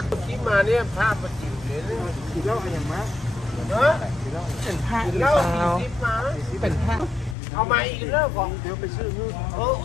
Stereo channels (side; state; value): right; drops out; at 7.4 s